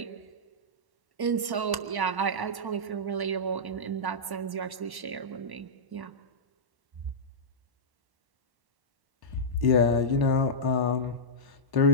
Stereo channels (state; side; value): late; left; 1.1 ms